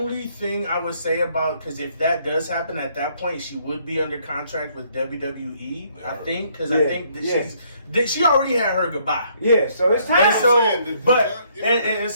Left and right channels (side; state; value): both; inverted; correlation -0.67